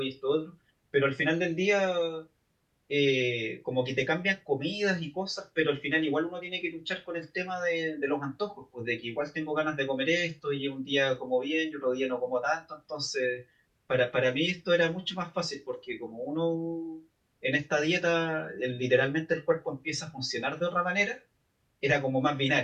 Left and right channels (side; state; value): both; identical; correlation 1.00